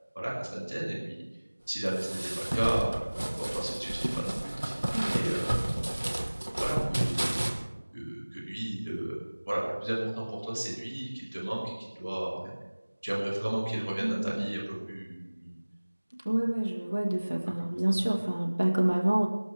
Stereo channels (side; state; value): both; inverted; correlation -1.00